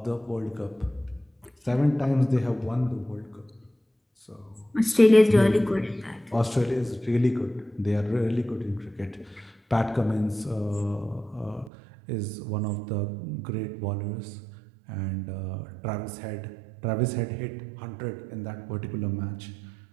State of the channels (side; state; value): left; drops out; at 11.7 s